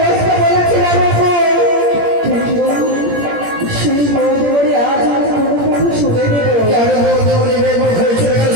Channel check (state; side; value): late; left; 17 ms